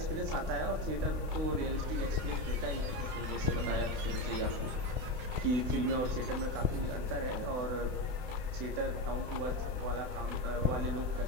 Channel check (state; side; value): late; left; 32 ms